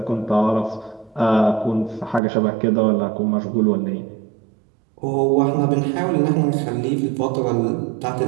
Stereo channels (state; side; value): drops out; left; at 2.2 s